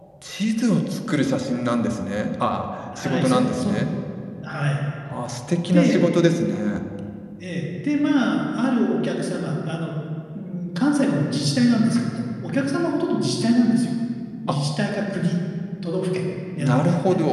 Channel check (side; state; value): both; identical; correlation 1.00